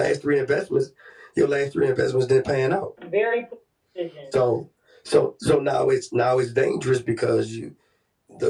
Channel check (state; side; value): identical; both; correlation 1.00